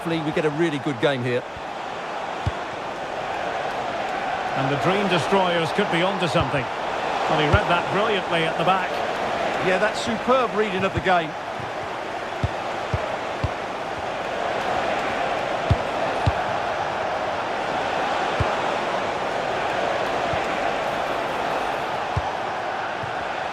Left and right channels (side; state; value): both; identical; correlation 1.00